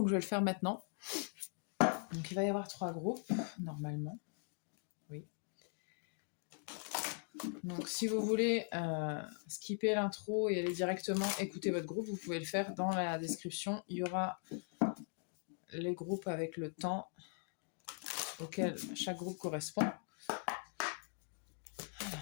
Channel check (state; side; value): silent; right; 51 dB below the other